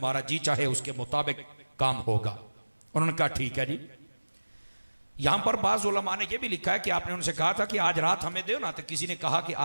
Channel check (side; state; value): both; inverted; correlation -1.00